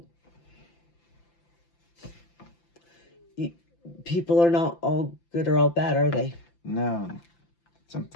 people are not all good or all bad, are they? No.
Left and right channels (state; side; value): late; right; 5.9 ms